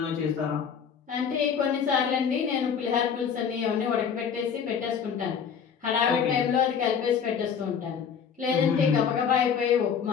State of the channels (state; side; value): quieter; right; 7.2 dB